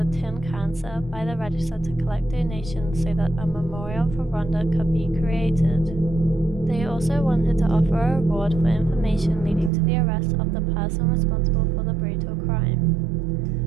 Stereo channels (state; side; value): drops out; left; at 9.7 s